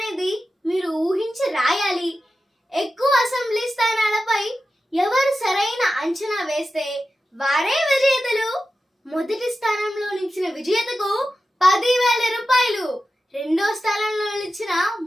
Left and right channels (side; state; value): both; normal; correlation 0.93